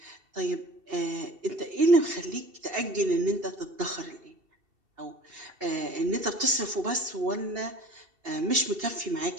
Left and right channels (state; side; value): late; left; 2.7 ms